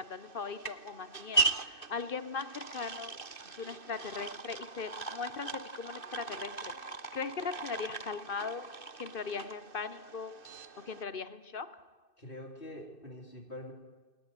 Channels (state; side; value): late; right; 2.6 ms